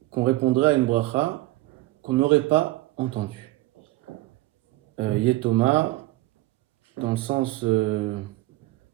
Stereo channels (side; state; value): left; quieter; 18.2 dB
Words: qu'on répondrait à une bracha qu'on n'aurait pas entendue. Yetoma, dans le sens